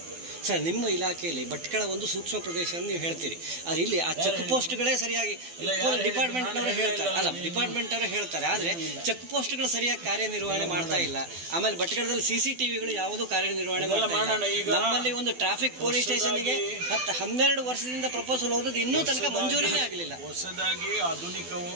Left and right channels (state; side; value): late; left; 12 ms